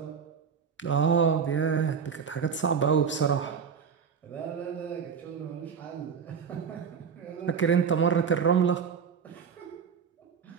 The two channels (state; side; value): quieter; left; 6.6 dB